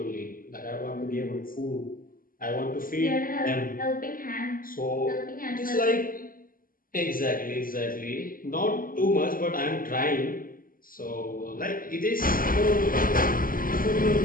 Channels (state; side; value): late; right; 0.41 ms